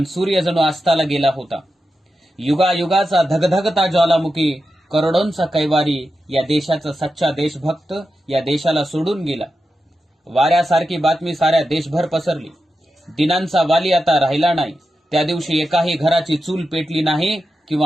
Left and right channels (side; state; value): both; normal; correlation 0.90